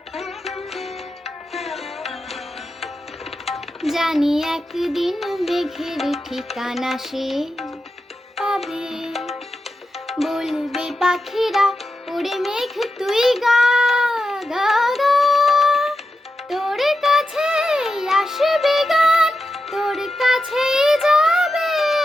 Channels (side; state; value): both; normal; correlation 0.89